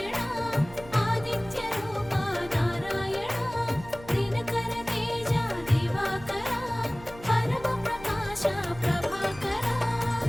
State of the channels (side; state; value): right; noise; hum, 18 dB below the sound